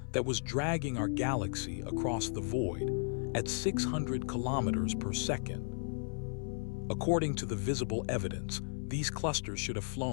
that was dragging our galaxy across the void at 600 kilometers per second. According to the visible evidence, These clusters should have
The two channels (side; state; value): right; silent; 55 dB below the other